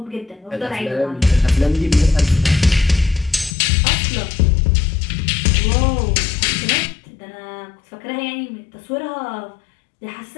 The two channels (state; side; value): drops out; right; at 3.5 s